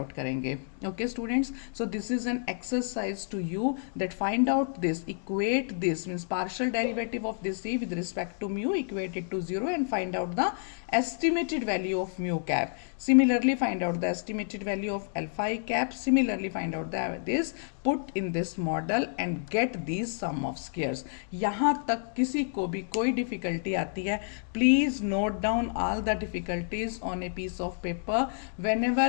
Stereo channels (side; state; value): right; silent; digital silence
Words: करेंगे। Okay students, so this is an exercise to you that find out this, equate this means partial derivative of this c with respect to mu, equate it to 0 and find out the estimated value of mu cap. Similarly find out the estimated value of alpha I cap. Similarly find out this, put in this model and get these sum of squares. यहाँ तक किसी को भी कोई difficulty आती है, please note down all the difficulties on a piece of paper